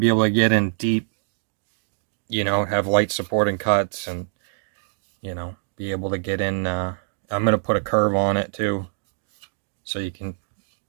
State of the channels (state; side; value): silent; left; digital silence